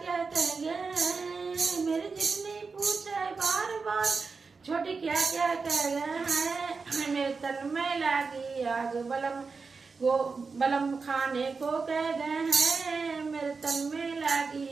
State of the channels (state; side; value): quieter; left; 4.7 dB